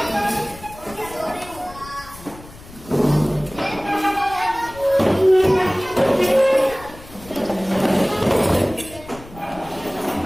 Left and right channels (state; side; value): noise; left; rumble, 19 dB below the sound